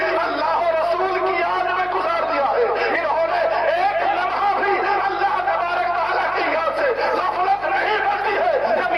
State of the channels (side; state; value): left; noise; hum, 21 dB below the sound